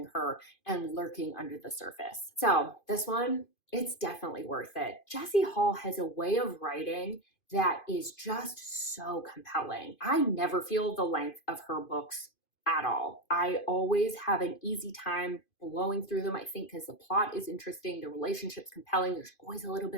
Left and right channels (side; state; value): right; late; 2.5 ms